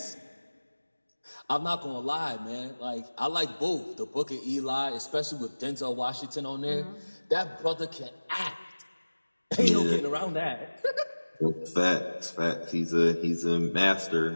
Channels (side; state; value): both; inverted; correlation -1.00